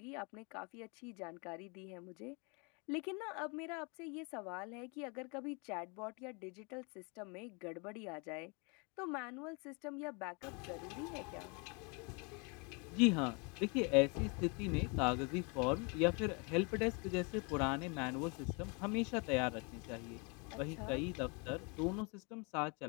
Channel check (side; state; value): right; quieter; 32.3 dB